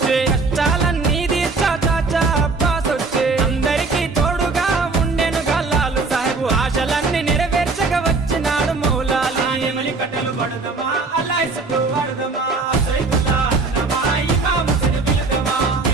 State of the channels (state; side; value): quieter; left; 3.9 dB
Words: కష్టాలన్నీ తీర్చా చాచా అబ్బాస్ వచ్చే అందరికీ తోడుగా ఉండెనుగా లాలు సాహెబు ఆశలన్నీ నెరవేర్చగా వచ్చినాడు మౌలాలి కట్టెలు పడదాం